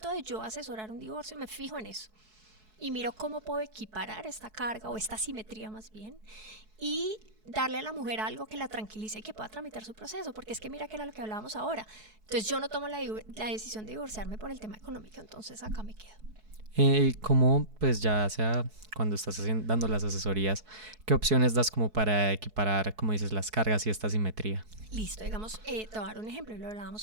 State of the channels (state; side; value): late; left; 4.6 ms